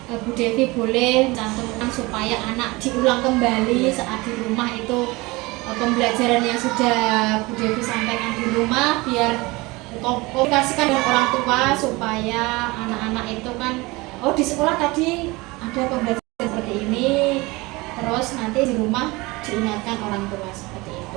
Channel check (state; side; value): quieter; left; 23.0 dB